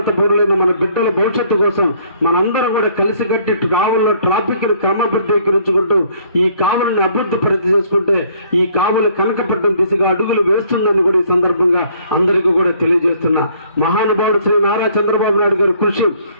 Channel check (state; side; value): inverted; both; correlation -0.62